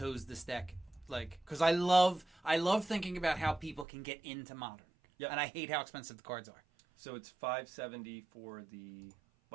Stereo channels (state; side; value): drops out; left; at 3.9 s